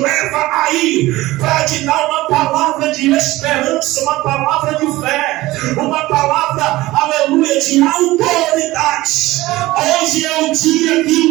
aí para te dar uma palavra de esperança, uma palavra de fé, uma palavra, aleluia, de autoridade. Hoje é o dia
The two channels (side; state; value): left; quieter; 18.4 dB